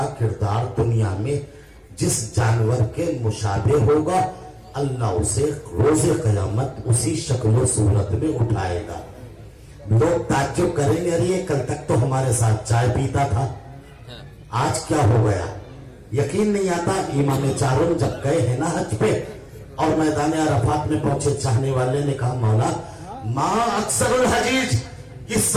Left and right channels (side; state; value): both; identical; correlation 1.00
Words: کردار دنیا میں جس جانور کے مشابہ ہوگا اللہ اسے روز قیامت اسی شکل و صورت میں اٹھائے گا۔ لوگ تعجب کریں گے ارے کل تک تو ہمارے ساتھ چائے پیتا تھا، آج کیا ہو گیا؟ یقین نہیں آتا۔ امام چاروں جب گئے ہیں نا حج پہ اور میدان عرفات میں پہنچے، چاہنے والے نے کہا مولا ماں اکثر الحجیج، اس